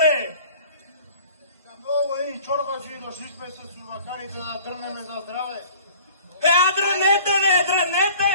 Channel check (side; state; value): both; inverted; correlation -0.48